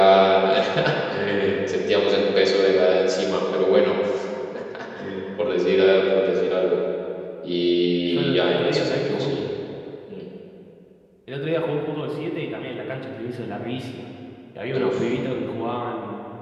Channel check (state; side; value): identical; both; correlation 1.00